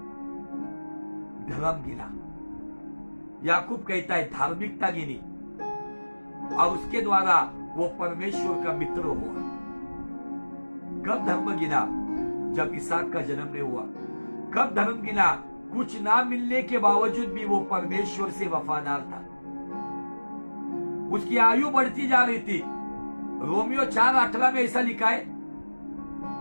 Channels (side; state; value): both; inverted; correlation -1.00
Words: धर्म गिना, याकूब कहता है धार्मिकता गिनी, और उसके द्वारा वो परमेश्वर का मित्र हुआ। कब धर्म गिना? जब इसहाक का जन्म नहीं हुआ। कब धर्म गिना? कुछ ना मिलने के बावजूद भी वो परमेश्वर से वफादार था। उसकी आयु बढ़ती जा रही थी। रोमियो 4:18 में ऐसा लिखा है,